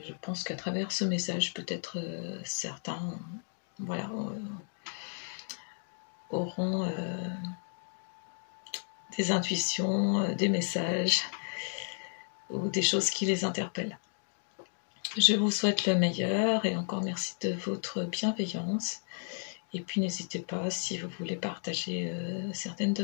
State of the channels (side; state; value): right; silent; 56 dB below the other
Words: je pense qu'à travers ce message, peut-être certains voilà, auront des intuitions, des messages ou des choses qui les interpellent. Je vous souhaite le meilleur et encore merci de votre bienveillance. Et puis n'hésitez pas, si vous voulez partager certaines de